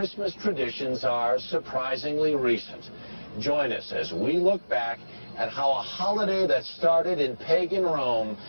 traditions are surprisingly recent. Join us as we look back at how a holiday that started in pagan Rome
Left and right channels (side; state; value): both; inverted; correlation -1.00